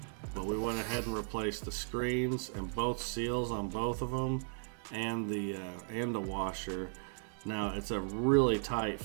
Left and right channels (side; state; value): left; silent; 54 dB below the other